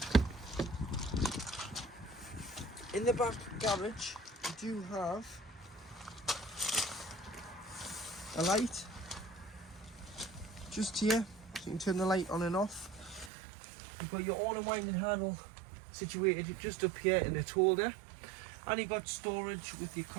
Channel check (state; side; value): drops out; left; at 13.3 s